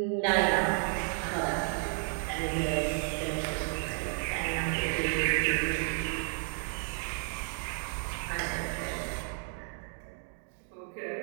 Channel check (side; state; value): left; silent; 56 dB below the other